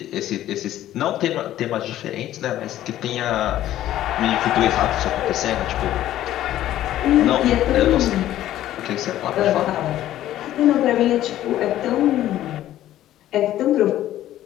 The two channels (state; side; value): quieter; right; 13.2 dB